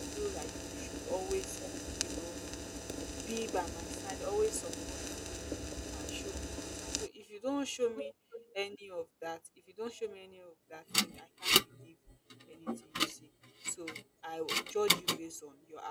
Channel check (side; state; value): both; identical; correlation 1.00